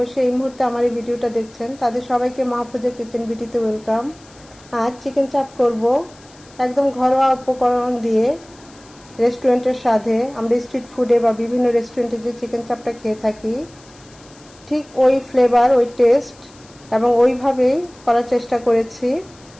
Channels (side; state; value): left; noise; hiss, 26 dB below the sound